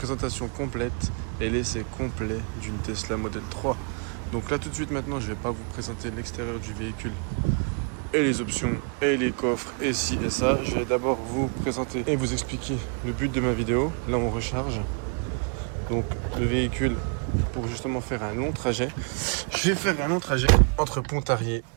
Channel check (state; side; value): quieter; left; 40.0 dB